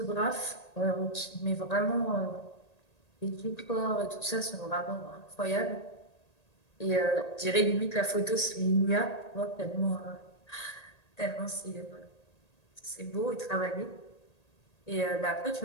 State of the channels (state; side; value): late; right; 1.8 ms